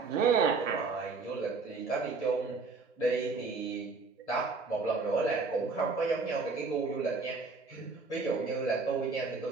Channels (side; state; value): left; quieter; 4.3 dB